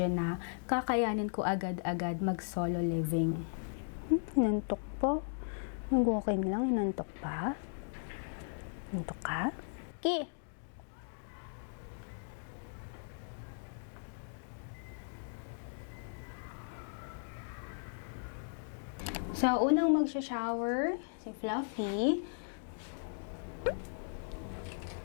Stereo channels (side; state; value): right; silent; digital silence